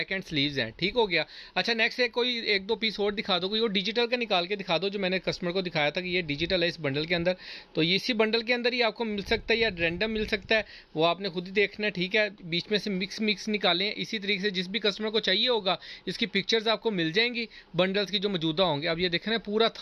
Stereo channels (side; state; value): both; identical; correlation 1.00